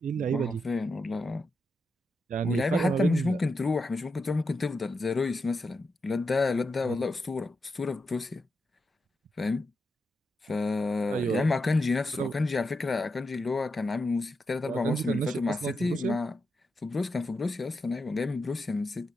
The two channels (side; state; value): both; normal; correlation 0.86